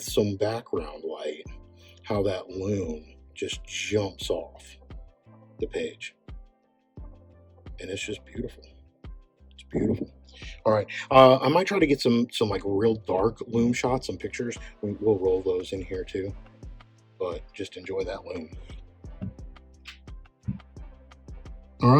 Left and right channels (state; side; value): identical; both; correlation 1.00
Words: some background light, how that loom just jumps off the page. And it's just beautiful. It's beautiful. All right, I might try to get some like real dark loom shots, some pictures. We'll roll those in here too, but just enjoy that loom. All